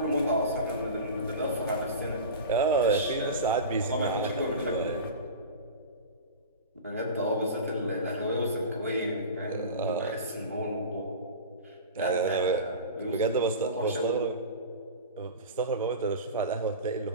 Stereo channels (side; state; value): both; inverted; correlation -0.31